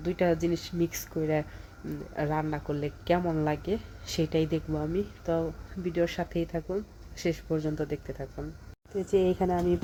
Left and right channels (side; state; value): both; identical; correlation 1.00